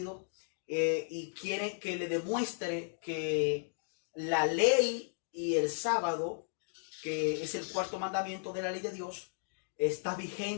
y quiere que le demuestre que la ley y el sábado, que es el cuarto mandamiento de la ley de Dios, está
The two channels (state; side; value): silent; right; digital silence